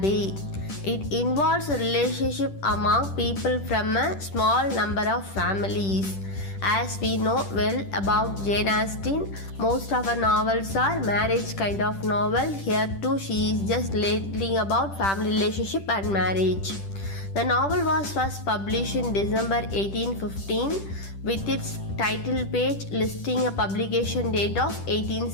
It involves a relationship among people from a small number of families. As we know well about Jane Austen, most of her novels are marriage kind of novel. Here too she is just lately about family relationship and marriage. The novel was first published in December 1815 with its title page listing a publication date of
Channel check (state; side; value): late; right; 10 ms